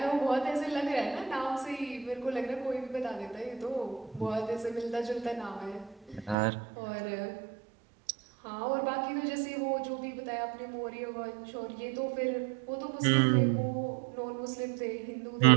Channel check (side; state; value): left; drops out; at 6.4 s